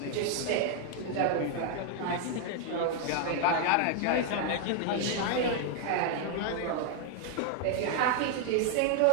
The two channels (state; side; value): different; both; correlation 0.00